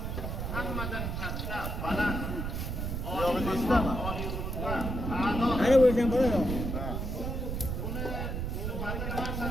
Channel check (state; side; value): noise; right; rumble, 3 dB below the sound